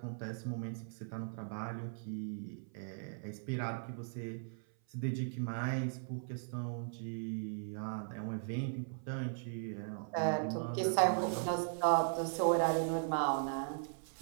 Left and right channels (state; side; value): silent; left; 52 dB below the other